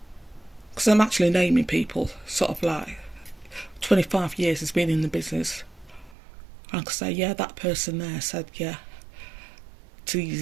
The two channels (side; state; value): left; drops out; at 6.2 s